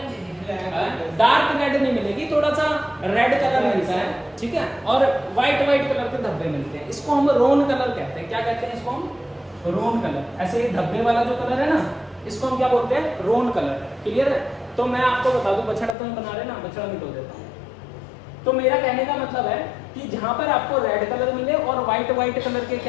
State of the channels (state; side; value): drops out; right; at 16.0 s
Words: डार्क रेड नहीं मिलेगी, थोड़ा सा रेड कलर मिलता है, ठीक है, और व्हाइट कलर के धब्बे मिलते हैं। इसको हम रोन कलर कहते हैं। क्या कहते हैं इसको हम? रोन कलर। ऐसे धब्बे वाला जो कलर है ना, इसको हम क्या बोलते हैं? रोन कलर। क्लियर है? तो मैं आपको बता दूं, बछड़ा तो बना रहे ना, बछड़ा मिटो देता हूँ। तो मेरा कहने का मतलब है कि जहां पर आपको रेड कलर मिले और व्हाइट कलर के